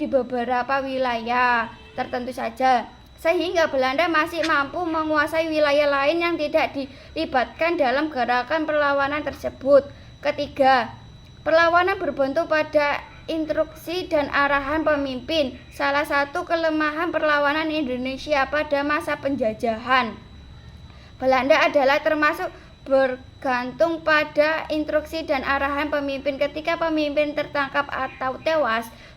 beberapa wilayah tertentu saja, sehingga Belanda masih mampu menguasai wilayah lain yang tidak dilibatkan dalam gerakan perlawanan tersebut. Ketiga, perlawanan berbentuk pada instruksi dan arahan pemimpin. Salah satu kelemahan perlawanan Indonesia pada masa penjajahan Belanda adalah termasuk bergantung pada instruksi dan arahan pemimpin. Ketika pemimpin tertangkap atau tewas,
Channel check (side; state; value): both; identical; correlation 1.00